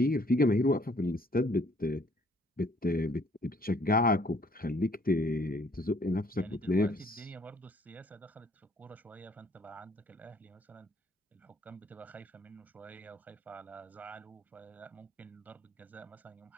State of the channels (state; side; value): normal; both; correlation 0.62